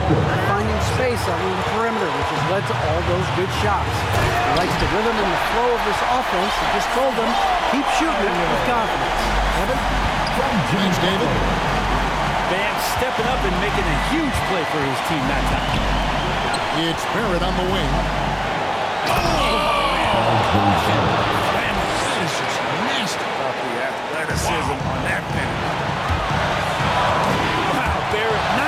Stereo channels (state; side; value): identical; both; correlation 1.00